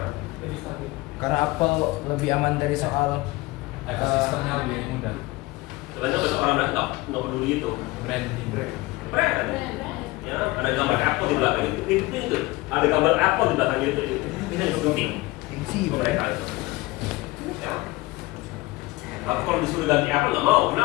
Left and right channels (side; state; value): right; quieter; 20.9 dB